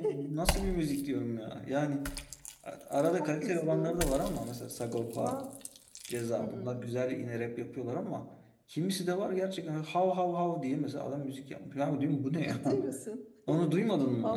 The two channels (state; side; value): identical; both; correlation 1.00